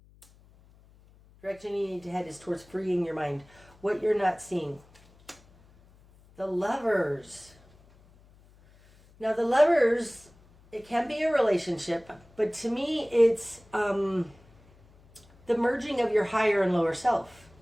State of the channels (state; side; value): noise; left; hum, 28 dB below the sound